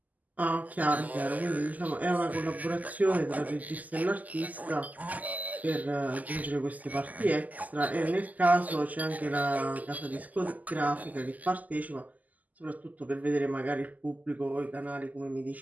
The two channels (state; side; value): late; left; 0.079 ms